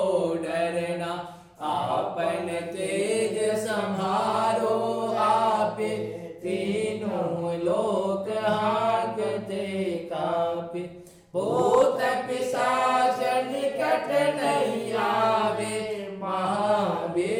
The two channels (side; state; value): both; identical; correlation 1.00